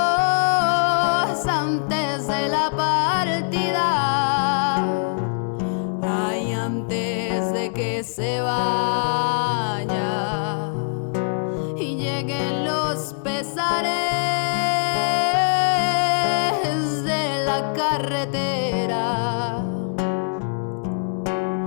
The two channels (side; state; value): right; silent; 64 dB below the other